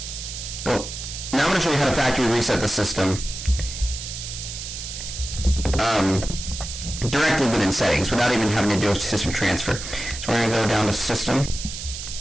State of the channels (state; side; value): noise; right; hiss, 8 dB below the sound